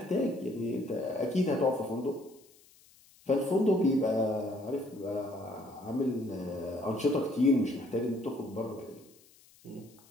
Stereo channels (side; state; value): left; noise; hiss, 27 dB below the sound